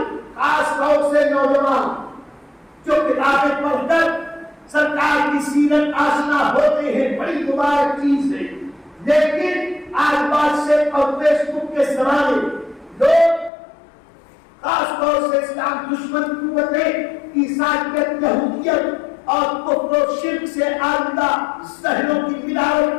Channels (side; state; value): right; drops out; at 13.5 s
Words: خاص طور سے نوجوان جو کتابیں پڑھ کر سرکار کی سیرت آشنا ہوتے ہیں، بڑی مبارک چیز ہے۔ لیکن آج بات سے اور فیس بک کے زمانے لوگ خاص طور سے اسلام دشمن قوتیں عیسائیت، یہودیت اور کفر و شرک سے آلودہ ذہنوں کی ملاوٹ